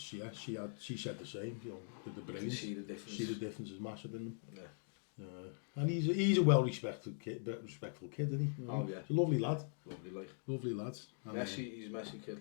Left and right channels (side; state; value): right; silent; digital silence